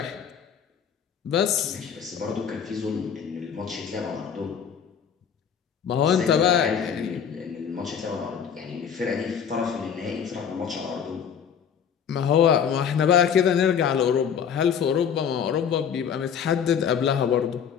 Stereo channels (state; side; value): quieter; right; 7.7 dB